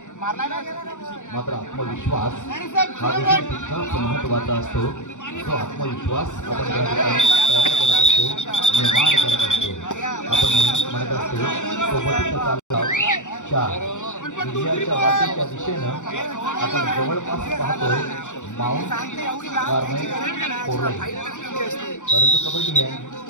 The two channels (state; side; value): late; right; 0.85 ms